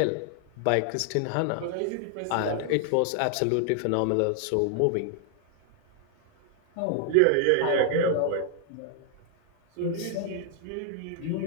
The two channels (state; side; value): different; both; correlation 0.00